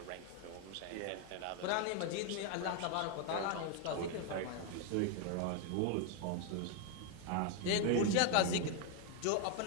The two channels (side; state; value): both; different; correlation 0.01